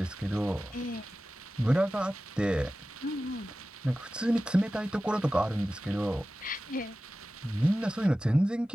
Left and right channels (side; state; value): both; normal; correlation 0.95